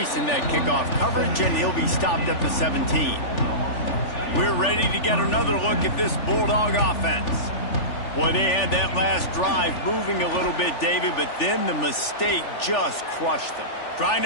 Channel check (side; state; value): right; late; 3.4 ms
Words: in that kickoff coverage, and he'll be stopped at the 17. We're ready to get another look at this Bulldog offense. Boy, they had that last drive moving a little bit, David, but then the mistake just crushed them. Trying